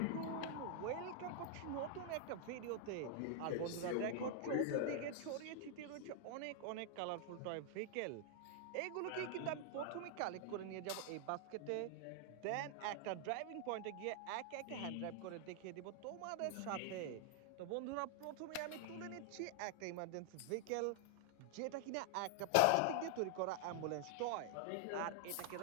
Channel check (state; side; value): different; both; correlation 0.00